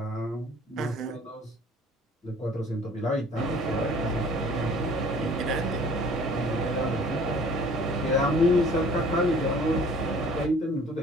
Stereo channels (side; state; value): both; normal; correlation 0.51